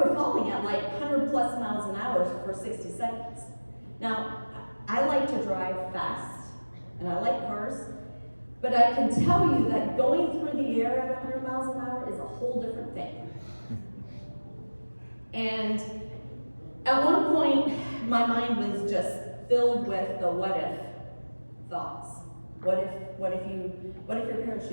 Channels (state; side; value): inverted; both; correlation -1.00